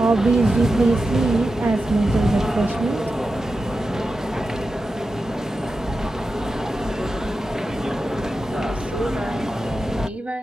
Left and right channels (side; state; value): both; normal; correlation 0.91